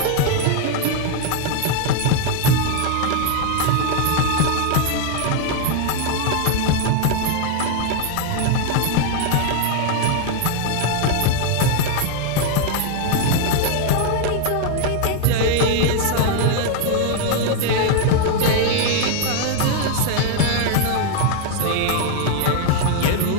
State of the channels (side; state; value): both; different; correlation 0.00